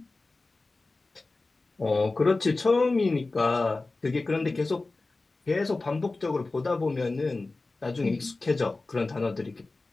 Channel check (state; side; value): quieter; right; 3.4 dB